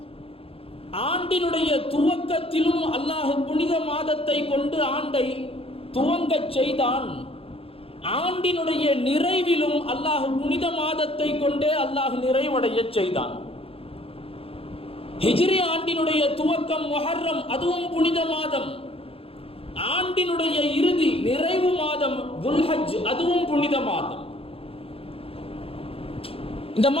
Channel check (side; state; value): right; late; 0.27 ms